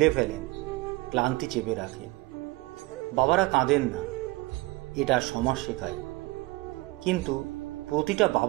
ফেলেন, ক্লান্তি চেপে রাখেন। বাবারা কাঁদেন না, এটা সমাজ শেখায়। কিন্তু প্রতিটা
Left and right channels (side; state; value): left; quieter; 21.7 dB